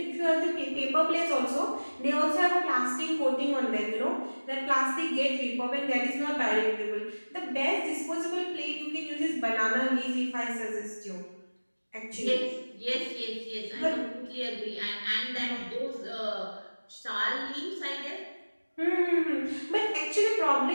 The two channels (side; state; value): both; inverted; correlation -1.00